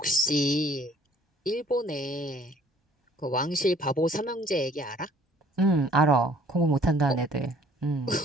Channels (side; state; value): both; normal; correlation 0.57